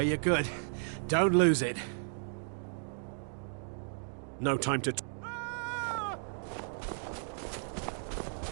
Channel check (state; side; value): silent; left; digital silence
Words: you good. Don't lose it. No time to...